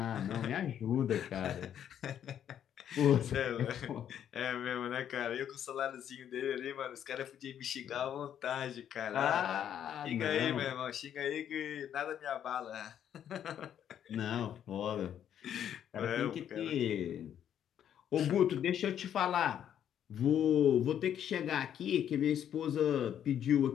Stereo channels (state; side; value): quieter; right; 9.7 dB